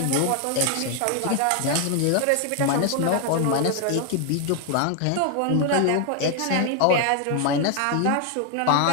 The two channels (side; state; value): both; different; correlation 0.01